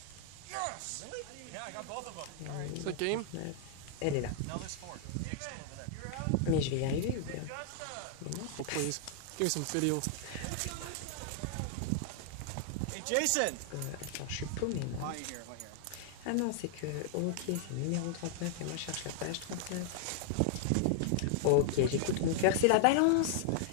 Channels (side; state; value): both; different; correlation 0.00